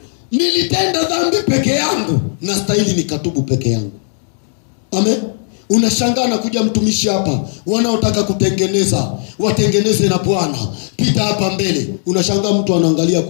Nilitenda dhambi peke yangu, na stahili nikatubu peke yangu. Amen. Unashangaa na kuja mtumishi hapa, wanaotaka kutengeneza, watengeneze na Bwana. Pita hapa mbele. Unashangaa mtu anaangalia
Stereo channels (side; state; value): right; silent; digital silence